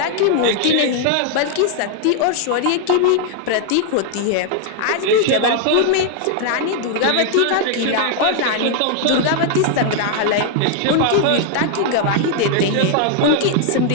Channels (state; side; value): different; both; correlation 0.00